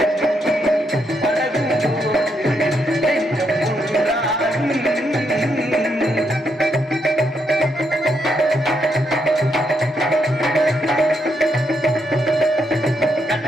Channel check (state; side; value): normal; both; correlation 0.78